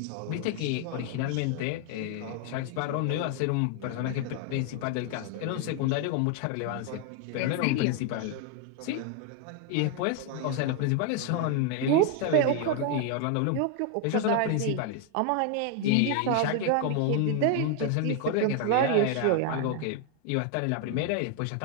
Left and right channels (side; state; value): both; different; correlation 0.00